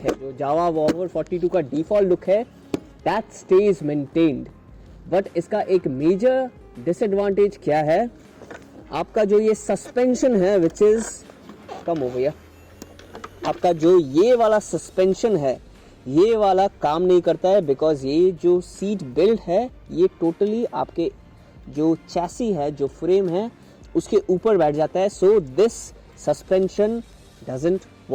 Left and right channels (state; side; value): identical; both; correlation 1.00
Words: है, जो जावा बॉबर 42 का default look है, that stays maintained. बट इसका एक मेजर डिसएडवांटेज क्या है, आपका जो ये सस्पेंशन है विच इज कम हो गया, आपका जो ये वाला सस्पेंशन है ये वाला काम नहीं करता है, बिकॉज ये जो सीट बेल्ट है ये टोटली आपके जो चैसी है, जो फ्रेम है उसके ऊपर बैठ जाता है। So this suspension doesn't